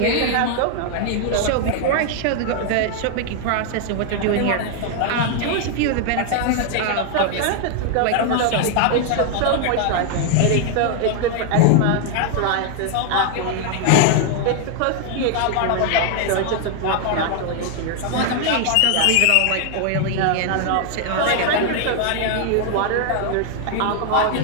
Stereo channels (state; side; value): different; both; correlation 0.00